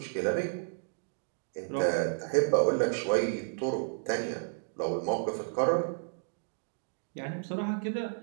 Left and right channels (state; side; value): silent; left; digital silence